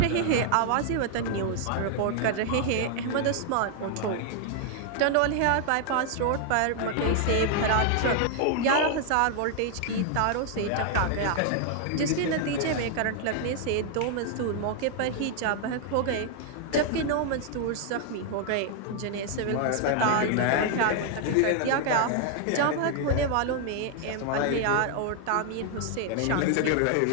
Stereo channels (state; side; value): different; both; correlation 0.00